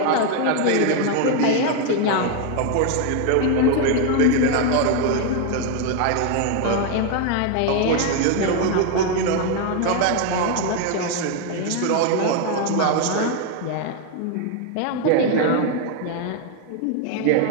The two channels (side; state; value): both; different; correlation 0.01